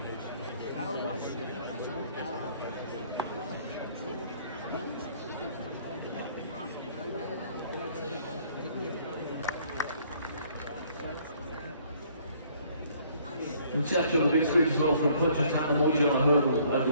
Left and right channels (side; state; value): both; inverted; correlation -0.61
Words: From Churchill, the big screen as well from Punchestown, the Morning on a hurdle